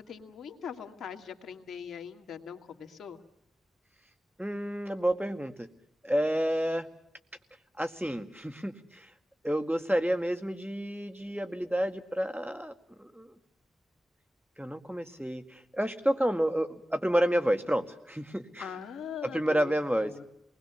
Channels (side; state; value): both; normal; correlation 0.95